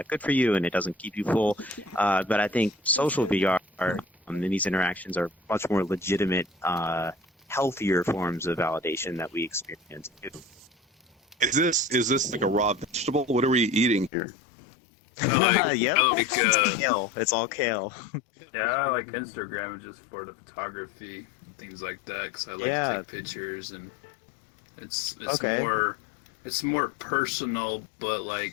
good for you and it doesn't keep you full. But I think social VR and these interactions are much more legitimate, healthier forms of validation that we experience too. Is this like a raw vegetable? What are we eating here? Yep. Like, Kale. It's all kale. yeah, I like Instagram just for the photography, things like that, because I like to take pictures, and it's Okay. more personal, but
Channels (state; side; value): drops out; right; at 14.1 s